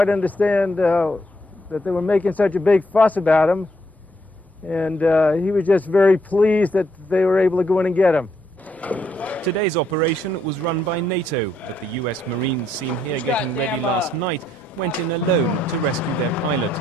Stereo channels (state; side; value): normal; both; correlation 0.74